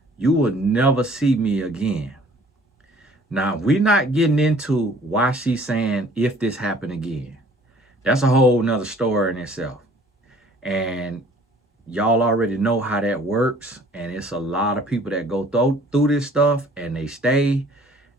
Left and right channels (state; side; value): normal; both; correlation 0.54